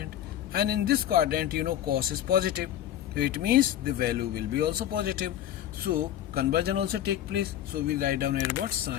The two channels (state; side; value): quieter; right; 11.5 dB